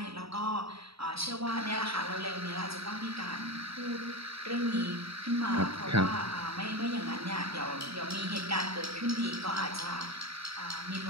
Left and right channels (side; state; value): left; late; 0.77 ms